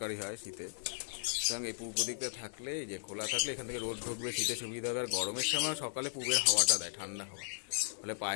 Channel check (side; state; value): right; silent; 54 dB below the other